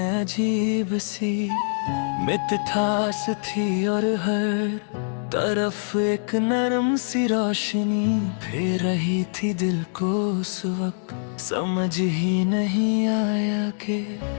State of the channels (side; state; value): right; silent; digital silence